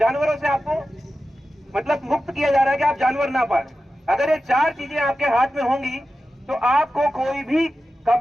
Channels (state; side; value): normal; both; correlation 0.93